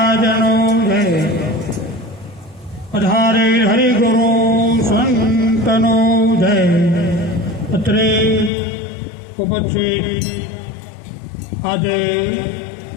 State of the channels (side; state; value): right; drops out; at 8.5 s